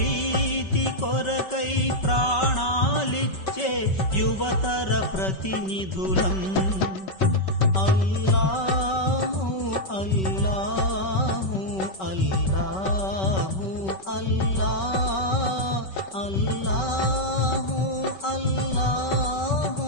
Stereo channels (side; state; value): right; late; 5.3 ms